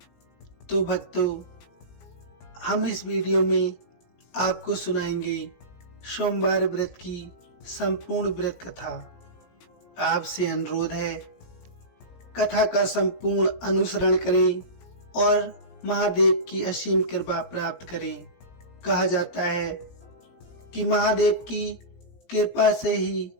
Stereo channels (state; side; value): late; right; 17 ms